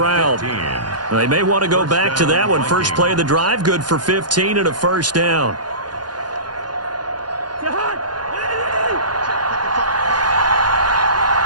They may want to go back to that one. First play of the drive, good for 15 and a 1st down.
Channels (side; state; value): left; late; 0.70 ms